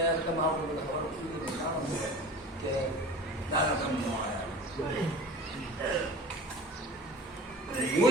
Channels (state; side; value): normal; both; correlation 0.39